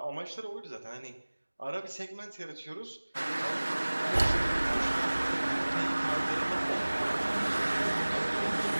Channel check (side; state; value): both; inverted; correlation -1.00